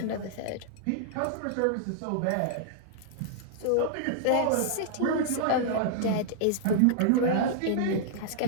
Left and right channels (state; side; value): different; both; correlation -0.01